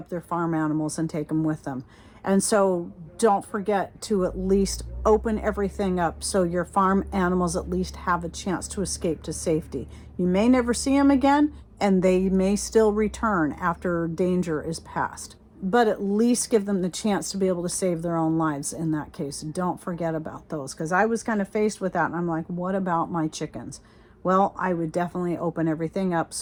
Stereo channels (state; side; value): identical; both; correlation 1.00